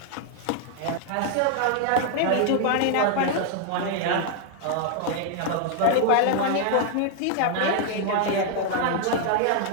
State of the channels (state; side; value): different; both; correlation 0.00